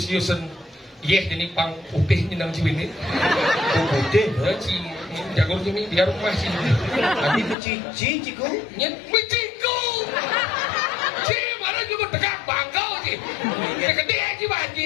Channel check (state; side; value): drops out; right; at 7.6 s